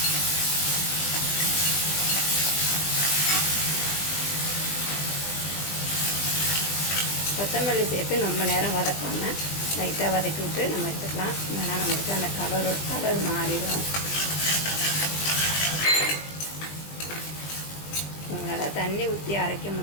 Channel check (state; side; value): late; right; 20 ms